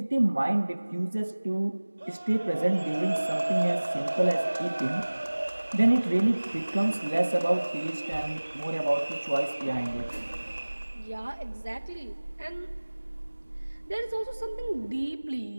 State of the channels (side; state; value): both; inverted; correlation -1.00